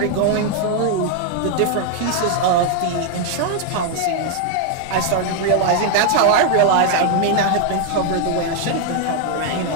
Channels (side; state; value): both; different; correlation 0.00